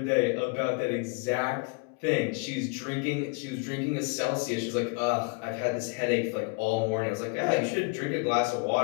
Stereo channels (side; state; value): right; quieter; 33.3 dB